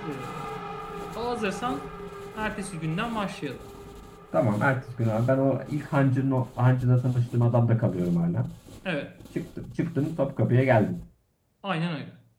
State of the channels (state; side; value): identical; both; correlation 1.00